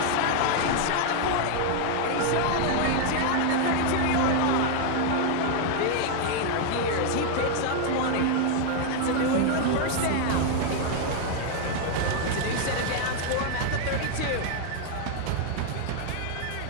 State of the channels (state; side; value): different; both; correlation 0.00